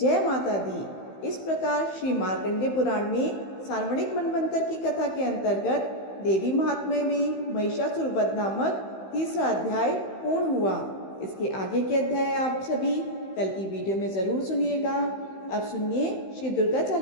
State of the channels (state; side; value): late; right; 15 ms